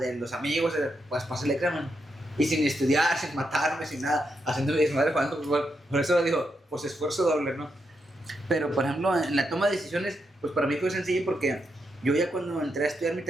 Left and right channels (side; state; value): both; normal; correlation 0.83